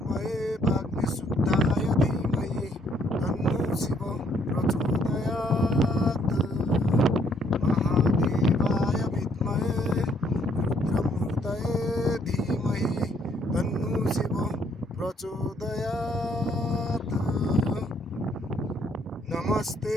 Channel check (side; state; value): both; normal; correlation 0.68